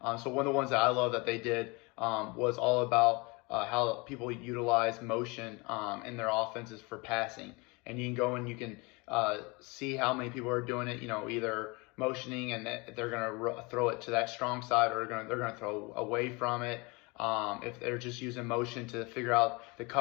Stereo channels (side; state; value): right; quieter; 27.2 dB